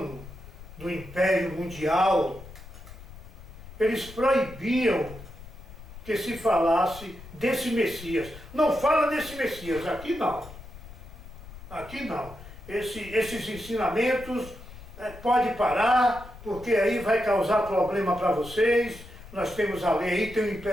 do Império Mundial, eles proibiam que se falasse desse Messias. Não fala desse Messias, aqui não. Aqui não. Esses ensinamentos pode parar, porque aí vai causar problema para vocês. Nós temos a lei aí, tem o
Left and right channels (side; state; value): left; noise; rumble, 16 dB below the sound